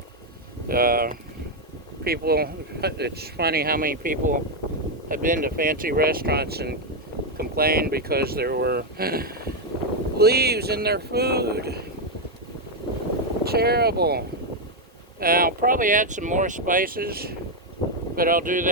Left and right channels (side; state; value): both; normal; correlation 0.03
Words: it's funny how many people have been to fancy restaurants and complained because there were leaves in their food. Terrible. I'll probably add some more spices, but I'll do